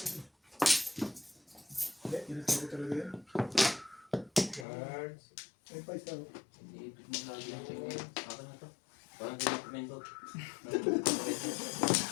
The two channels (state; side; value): drops out; right; at 4.7 s